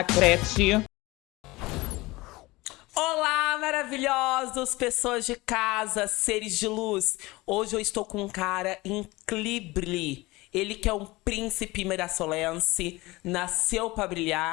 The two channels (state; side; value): quieter; right; 21.2 dB